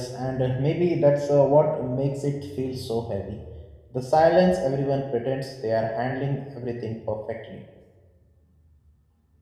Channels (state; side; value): identical; both; correlation 1.00